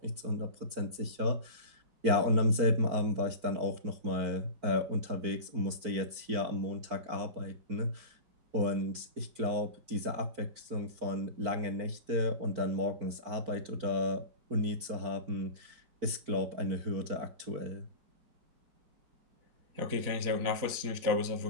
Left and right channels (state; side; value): late; left; 4.5 ms